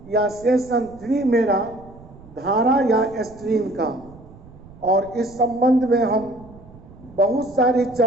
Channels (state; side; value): noise; right; rumble, 21 dB below the sound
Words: या सेशन 3 मेरा धारा या स्ट्रीम का। और इस संबंध में हम बहुत सारी